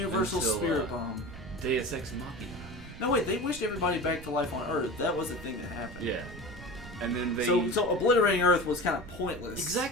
Until, Spirit Bomb. Deus Ex Machina. No, wait, they wished everybody back to life on Earth. That was the thing that happened. Yeah. And then they... So obliterating Earth was kind of pointless.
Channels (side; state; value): right; noise; rumble, 15 dB below the sound